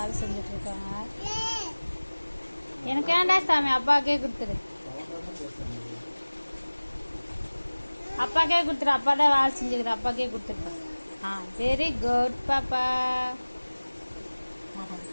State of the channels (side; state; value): both; inverted; correlation -1.00